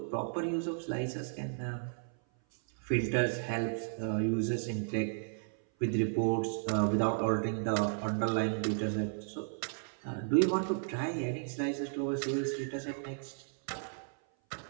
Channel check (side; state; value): left; silent; 55 dB below the other